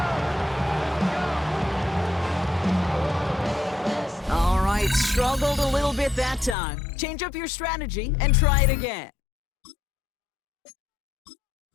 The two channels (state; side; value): drops out; right; at 6.6 s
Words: All right, struggled a little bit that time. Change up your strategy and try it again.